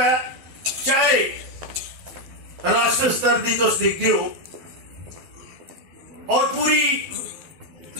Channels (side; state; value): left; late; 12 ms